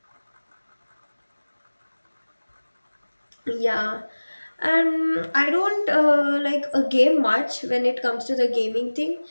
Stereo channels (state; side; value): inverted; both; correlation -1.00